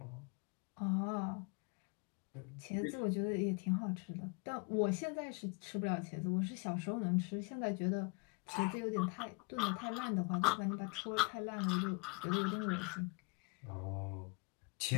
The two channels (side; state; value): right; quieter; 30.7 dB